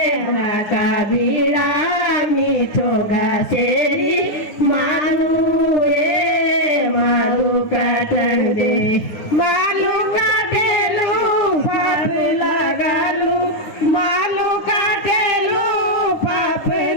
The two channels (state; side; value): late; right; 9.5 ms